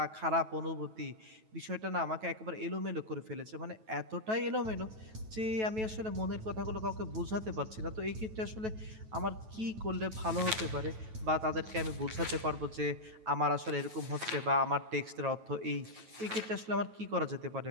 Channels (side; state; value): left; late; 9.2 ms